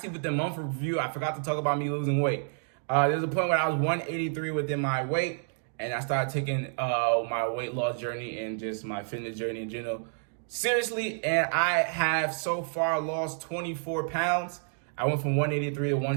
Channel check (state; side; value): silent; left; 58 dB below the other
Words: with the month review, I forgot to talk about me losing weight. There's a point where I was 183 within my weight, and I started taking my weight loss journey and just my fitness journey in general seriously, and I have so far lost 24 pounds. I went from 183 to